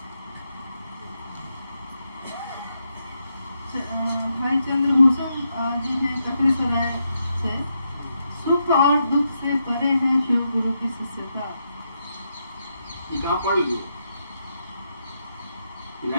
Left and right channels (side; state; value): both; inverted; correlation -0.82